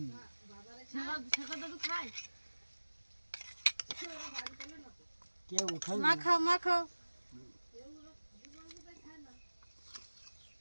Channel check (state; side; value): inverted; both; correlation -1.00